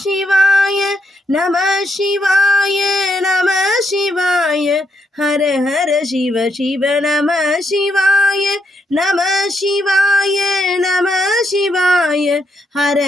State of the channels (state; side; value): normal; both; correlation 0.78